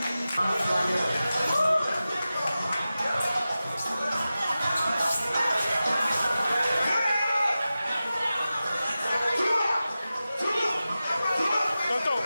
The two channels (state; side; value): inverted; both; correlation -0.94